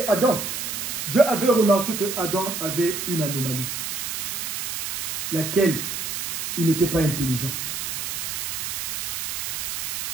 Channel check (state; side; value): noise; right; hiss, 3 dB below the sound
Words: Adam, Dieu avait remarqué que Adam avait une anomalie, laquelle il n'était pas intelligent.